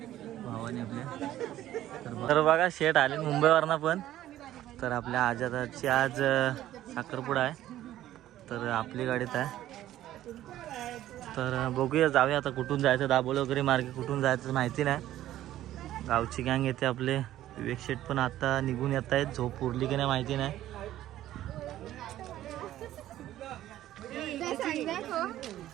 भावाने आपल्या. तर बघा शेट आले मुंबईवरनं पण. तर आपल्या आजादाची आज साखरपुडा आहे. तर आपली गाडीत आहे. तर बघूया जाऊया आता कुठून जायचं. दाबोली वगैरे मार्गे कुठून जायचं माहिती नाही. गावची गँग येते आपले. विवेक शेट पण आता निघून येत आहेत. झोप उरली की नाही माहिती नाही.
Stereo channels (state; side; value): quieter; left; 13.4 dB